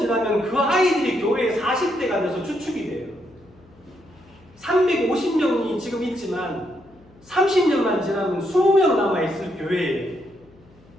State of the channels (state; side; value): noise; left; hum, 28 dB below the sound